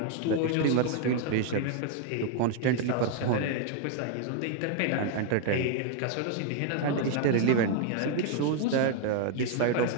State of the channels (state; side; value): different; both; correlation 0.00